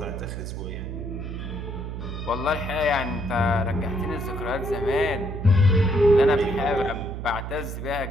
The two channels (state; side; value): noise; right; hum, 6 dB below the sound